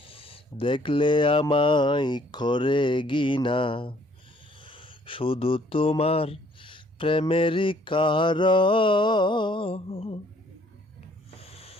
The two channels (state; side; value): normal; both; correlation 0.61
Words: দেখলে আমায় করে গিনা। শুধু তোমার প্রেমেরই কারণ